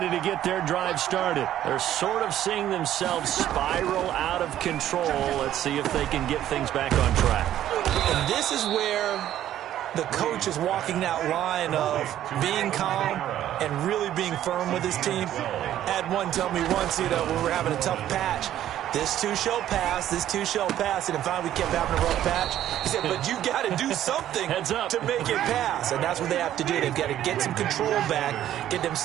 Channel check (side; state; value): left; quieter; 12.0 dB